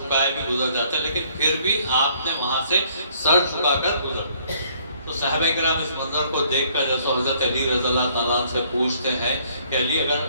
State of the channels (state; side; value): inverted; both; correlation -0.63